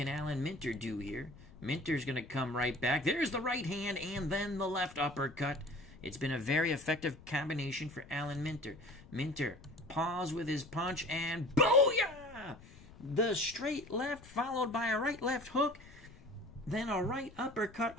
Alan Minter do here? Minter's going to come right back. There's the right hand and then the left uppercut. It's been a very effective combination for Alan Minter. Minter paws with his punch and booyah! The straight left followed by a right-left hook, then a right uppercut.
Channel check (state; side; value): noise; left; rumble, 21 dB below the sound